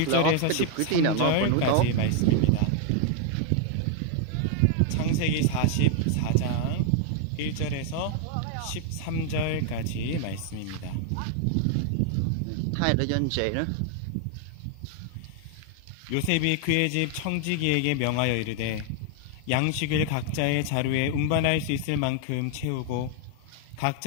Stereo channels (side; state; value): both; different; correlation 0.00